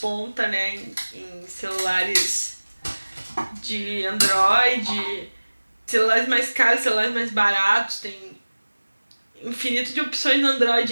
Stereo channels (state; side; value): inverted; both; correlation -1.00